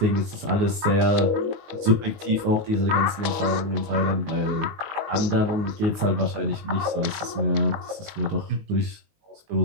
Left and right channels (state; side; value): late; left; 19 ms